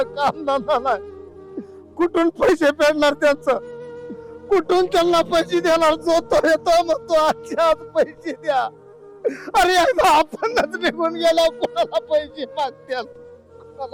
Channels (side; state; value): both; identical; correlation 1.00